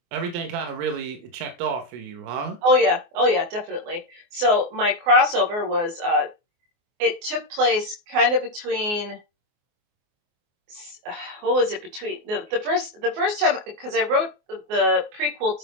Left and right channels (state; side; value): late; left; 24 ms